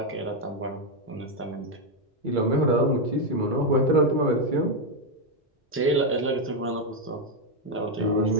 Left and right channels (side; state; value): both; normal; correlation 0.03